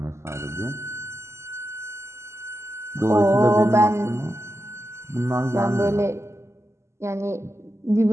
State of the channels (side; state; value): left; late; 0.13 ms